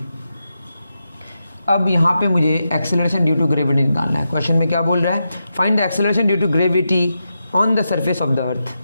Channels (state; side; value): inverted; both; correlation -0.87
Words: अब यहाँ पे मुझे एक्सेलरेशन ड्यू टू ग्रेविटी निकालना है। क्वेश्चन में क्या बोल रहा है, find the acceleration due to gravity on the surface of the earth,